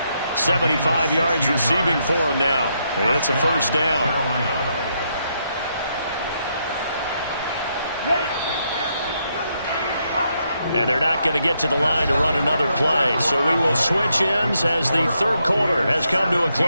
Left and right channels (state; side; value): inverted; both; correlation -0.78